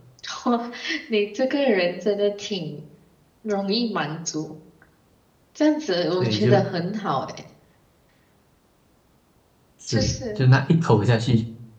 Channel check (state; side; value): identical; both; correlation 1.00